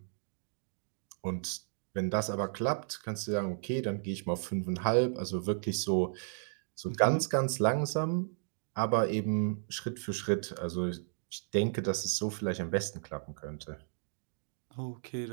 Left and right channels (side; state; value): left; silent; digital silence